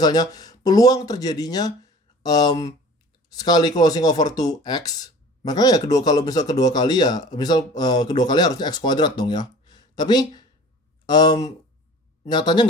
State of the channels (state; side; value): normal; both; correlation 0.43